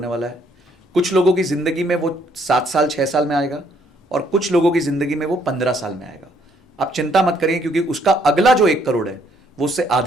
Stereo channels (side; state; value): both; normal; correlation 0.68